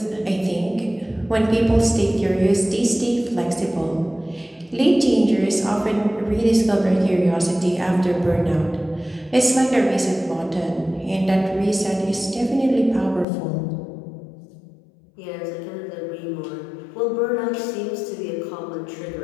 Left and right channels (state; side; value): drops out; right; at 13.2 s